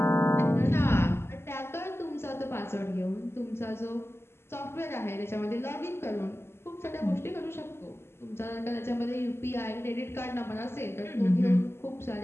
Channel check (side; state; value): right; late; 0.12 ms